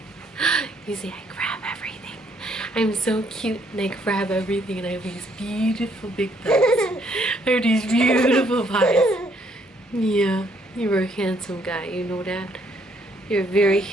You see, I grab everything. I'm so cute and I grab everything, and I have these beautiful big thighs. I have these beautiful thighs. Yeah, you're a handsome guy, you know that? You're a very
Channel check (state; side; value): normal; both; correlation 0.68